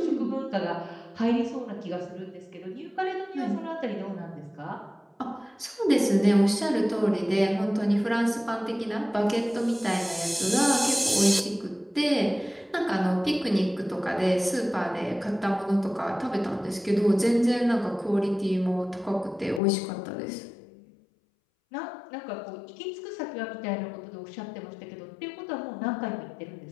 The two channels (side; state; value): right; drops out; at 19.6 s